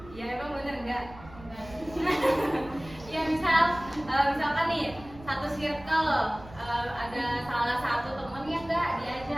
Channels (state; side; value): noise; right; rumble, 18 dB below the sound